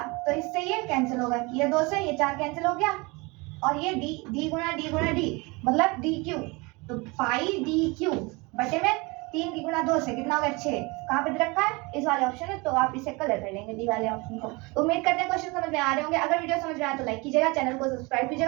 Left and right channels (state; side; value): quieter; left; 26.3 dB